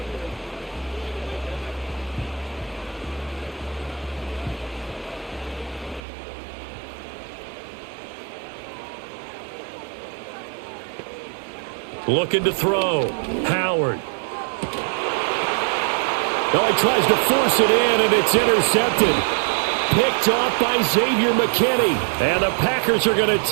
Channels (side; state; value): left; drops out; at 6.0 s